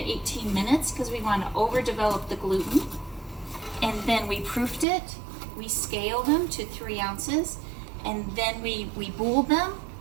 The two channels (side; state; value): left; drops out; at 4.9 s